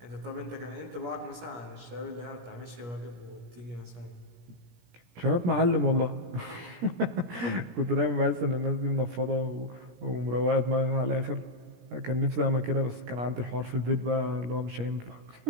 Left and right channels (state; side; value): late; left; 17 ms